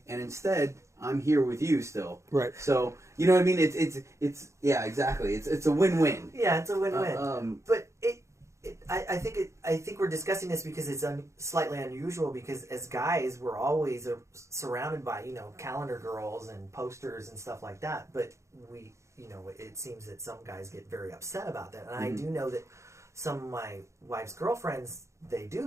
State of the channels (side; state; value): left; late; 0.14 ms